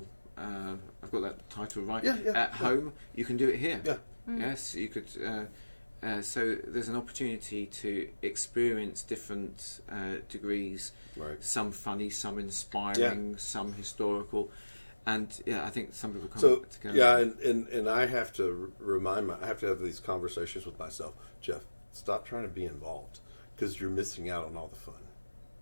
I've got that title right. At home, you can do it here. Yeah. Yes, you could. So there's an opportunity to experience different degrees. Right. Some funny, some inspiring, some historical, and I think some people come together. Yeah, and I have to I have to have these conversations with myself. Jeff, stop trying to be involved because you're missing out on all the fun.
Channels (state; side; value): inverted; both; correlation -1.00